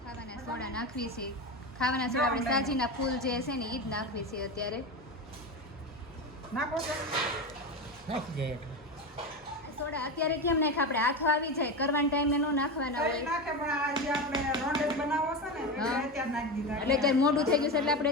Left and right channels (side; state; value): both; normal; correlation 0.20